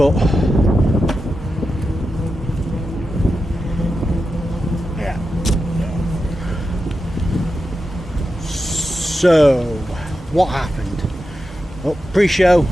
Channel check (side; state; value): both; normal; correlation 0.90